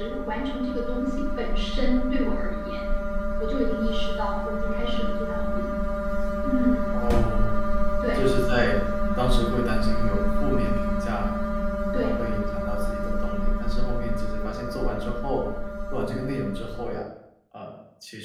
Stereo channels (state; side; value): identical; both; correlation 1.00